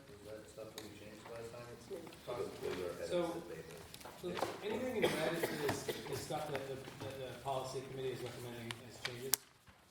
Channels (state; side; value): identical; both; correlation 1.00